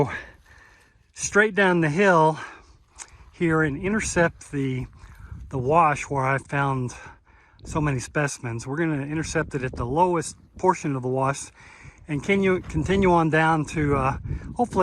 straight down the hill here and intercept the wash where I found so many specimens. We're going to intercept it at the lowest portion of the wash and continue on down to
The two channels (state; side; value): identical; both; correlation 1.00